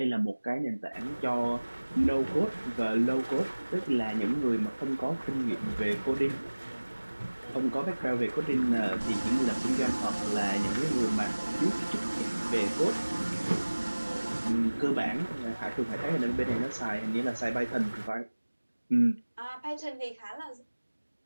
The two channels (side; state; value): both; inverted; correlation -1.00